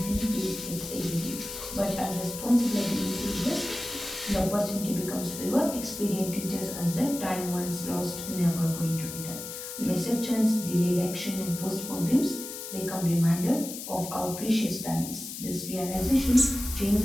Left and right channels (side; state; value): left; noise; hiss, 9 dB below the sound